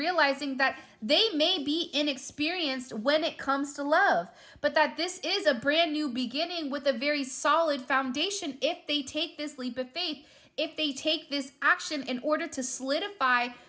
that they may be inexperienced when it comes to love, but that this is a brand new beginning with a very solid foundation if they take this leap of faith, if they take this action in order to solidify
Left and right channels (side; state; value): both; identical; correlation 1.00